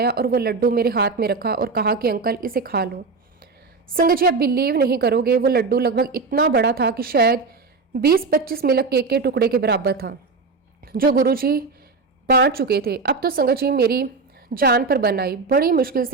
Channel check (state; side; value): quieter; left; 4.3 dB